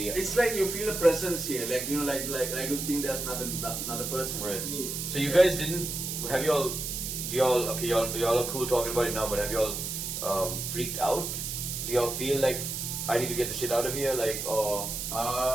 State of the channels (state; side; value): noise; right; hiss, 4 dB below the sound